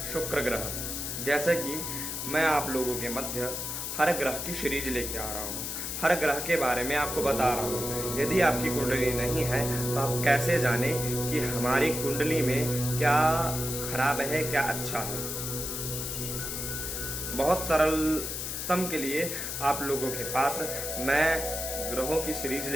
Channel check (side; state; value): left; noise; hiss, 4 dB below the sound